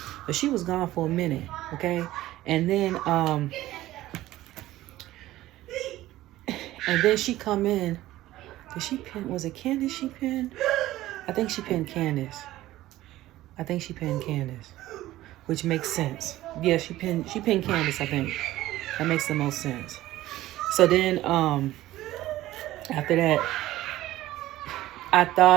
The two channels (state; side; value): quieter; left; 15.6 dB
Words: but she was gone for a minute, okay? And then she come in. Did she pin? Was it Candice she pinned? I think she pinned Candice. Which makes sense. Yeah, she pinned Candice, I think. That makes the most sense. So then, after that, I